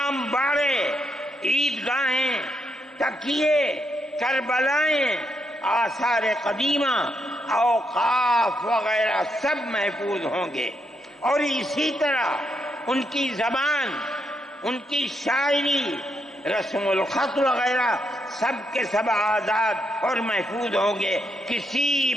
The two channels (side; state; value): both; normal; correlation 0.80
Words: باڑے، عیدگاہیں، تکیے، کربلائیں، آثار قدیمہ، اوقاف وغیرہ سب محفوظ ہوں گے، اور اسی طرح ان کی زبان، ان کی شاعری، رسم الخط وغیرہ سب کے سب آزاد اور محفوظ ہوں گے، کسی